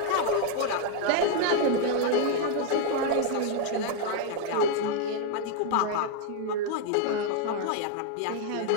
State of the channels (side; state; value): both; different; correlation 0.00